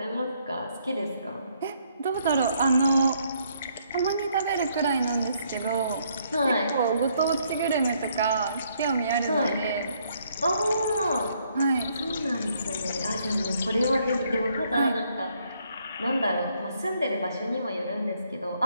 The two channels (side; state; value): both; inverted; correlation -0.70